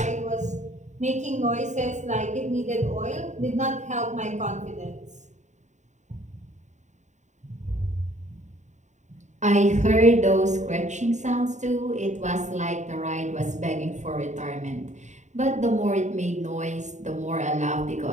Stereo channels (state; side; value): late; left; 0.34 ms